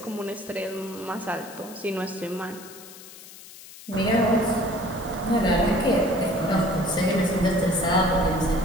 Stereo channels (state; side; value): noise; left; hiss, 17 dB below the sound